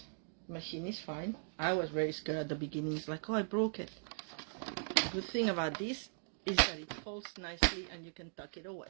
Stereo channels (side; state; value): left; silent; digital silence